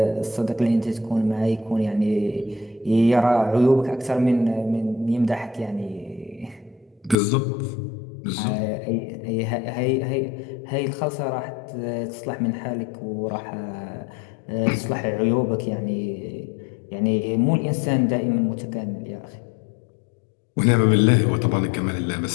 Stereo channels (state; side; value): drops out; right; at 7.2 s